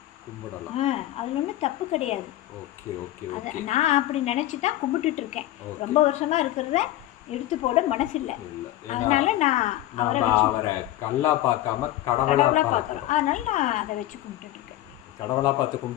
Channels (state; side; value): quieter; right; 14.8 dB